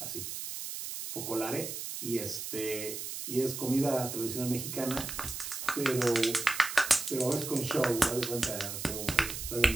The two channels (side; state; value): right; noise; hiss, 6 dB below the sound